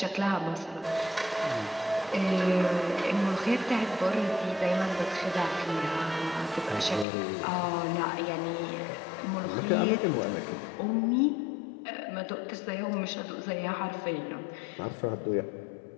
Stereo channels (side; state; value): right; drops out; at 7.1 s